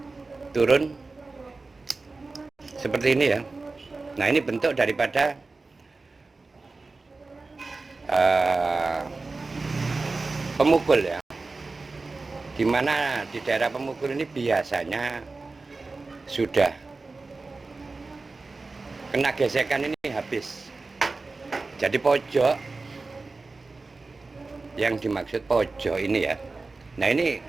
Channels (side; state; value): left; quieter; 3.7 dB